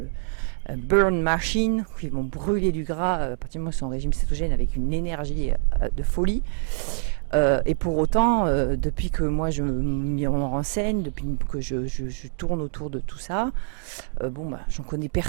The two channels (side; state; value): left; silent; digital silence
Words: burn machine, qui vont brûler du gras à partir du moment où ils sont en régime cétogène avec une énergie de folie. Et pour autant, depuis que moi je m'y renseigne, depuis que je tourne autour de tout ça, j'en connais